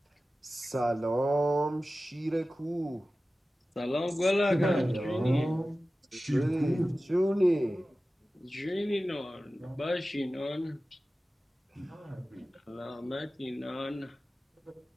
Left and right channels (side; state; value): both; normal; correlation 0.95